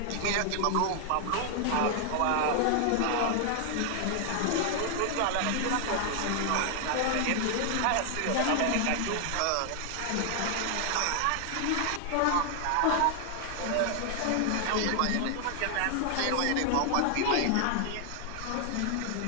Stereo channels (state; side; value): different; both; correlation 0.00